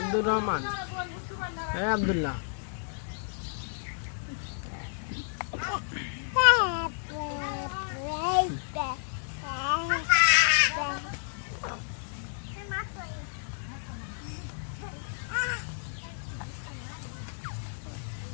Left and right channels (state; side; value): silent; right; 57 dB below the other